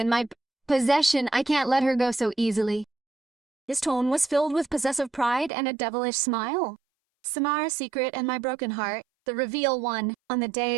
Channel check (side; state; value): left; drops out; at 5.5 s